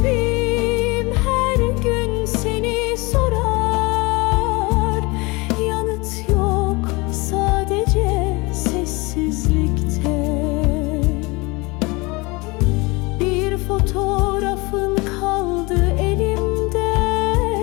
her gün seni sorar, yanıt yok sadece sessizlikte. Bir fotoğrafın kaldı elimde,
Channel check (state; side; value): quieter; right; 25.5 dB